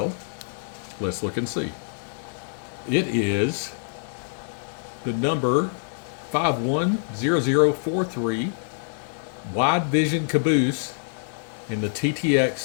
let's look and see. It is the number 510043 Wide Vision Caboose in the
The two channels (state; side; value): silent; right; digital silence